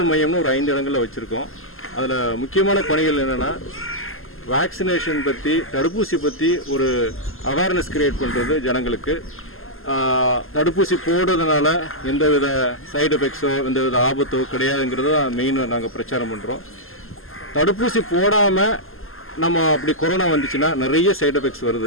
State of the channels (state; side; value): late; right; 0.60 ms